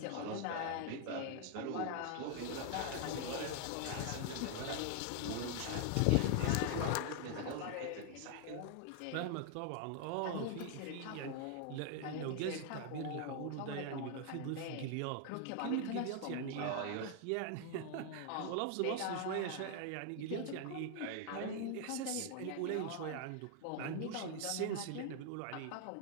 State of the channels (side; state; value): both; different; correlation 0.00